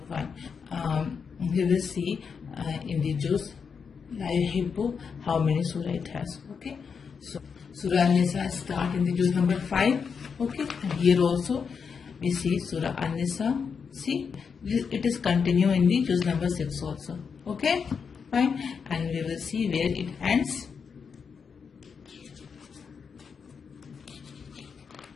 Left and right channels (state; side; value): quieter; right; 6.0 dB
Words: fine. We will see in the juz La Yuhibbu how many surah it has. Okay, so Surah An-Nisa start in the juz number 5. Okay, and here also we see Surah An-Nisa. See, it is continue in the juz number 6 also. Okay, fine, and we will see where it ends.